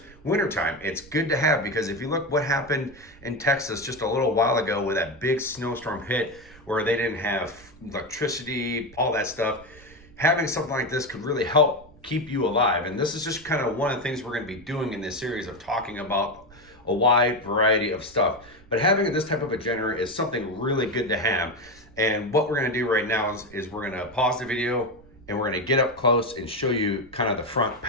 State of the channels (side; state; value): right; noise; rumble, 24 dB below the sound